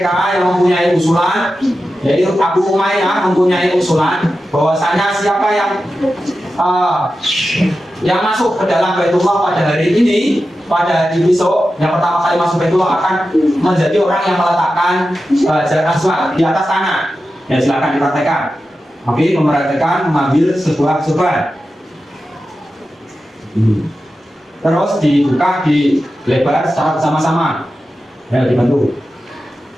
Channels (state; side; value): normal; both; correlation 0.92